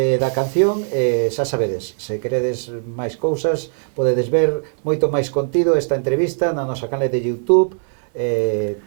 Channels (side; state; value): left; silent; 66 dB below the other